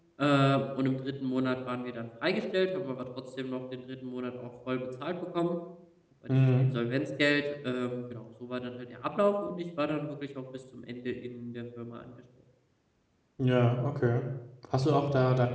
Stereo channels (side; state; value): both; identical; correlation 1.00